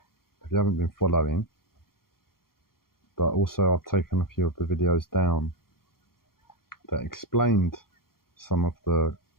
following, but also I've taken a few of the videos down that explained some of the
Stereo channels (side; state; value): right; late; 0.93 ms